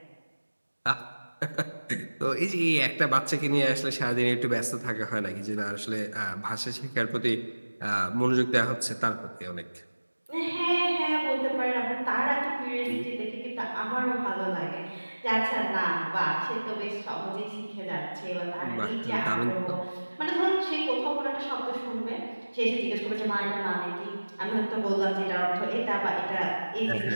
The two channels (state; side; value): inverted; both; correlation -1.00